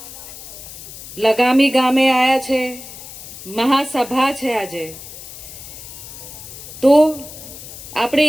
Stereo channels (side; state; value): left; noise; hiss, 14 dB below the sound